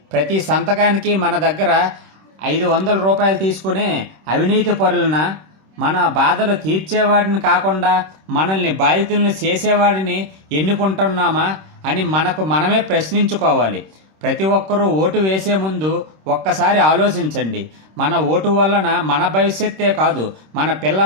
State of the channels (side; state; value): left; late; 26 ms